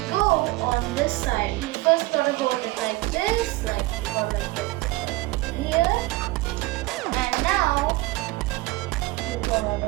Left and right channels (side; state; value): left; quieter; 20.6 dB